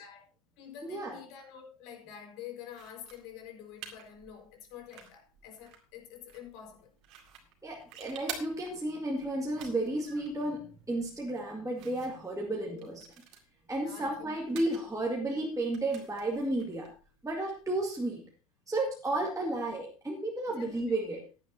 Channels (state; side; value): normal; both; correlation 0.66